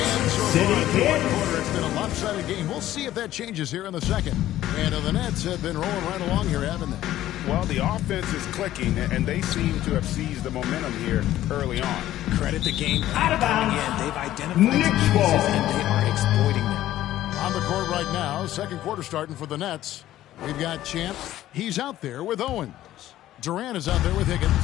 City Kid. It's been a lopsided game. We'll see if that changes here in the second. And the Nets have been rolling right along here, haven't they? Well, the offense is clicking, and they seem to have seized the momentum here early on. Credit the game Out of bounds. They've identified Knicks some ball. weaknesses, and they are exploiting them. On the court right now, second quarter starting for the Nets. We've got Champ. He's out there with Owens. Durant is out there with Higgins.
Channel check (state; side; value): quieter; right; 13.7 dB